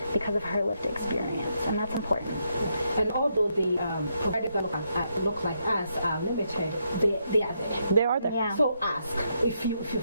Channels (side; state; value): both; inverted; correlation -0.79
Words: because of her lived experience, and that's important. And although the providers that look like us are limited, they are there. They are there. Yeah. So ask if you